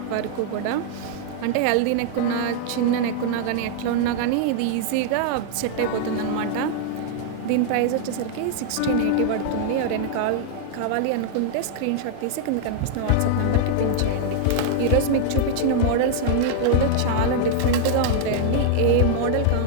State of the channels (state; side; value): different; both; correlation -0.01